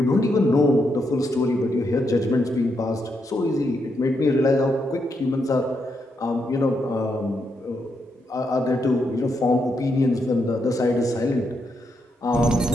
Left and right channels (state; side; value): normal; both; correlation 0.80